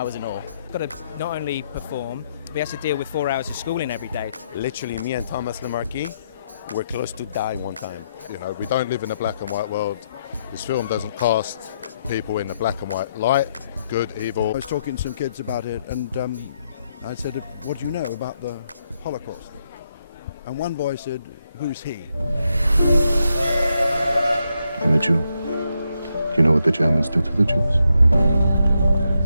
was in awe. Got to not only perform, but he has to deal with 4 hours of schooling every day. Literally, me and Thomas Lemarquis were close to die one time. You know, we don't live in a black and white world. This film doesn't cast people in the black and white light, good, evil. I was talking to some kids about it, and I said, what do you know about the Holocaust? And one boy said, who's he? I'm a Jew. You know what the Germans did to the Jews?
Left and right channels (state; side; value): inverted; both; correlation -0.80